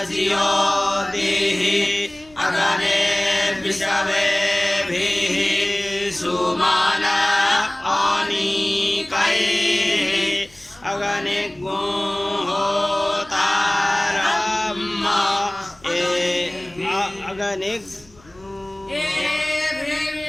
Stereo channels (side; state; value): left; noise; rumble, 28 dB below the sound